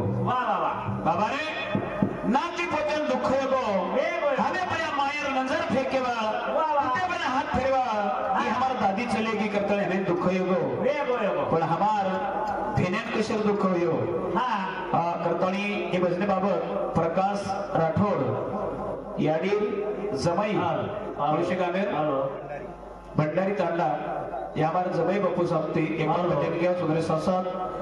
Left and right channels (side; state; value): both; identical; correlation 1.00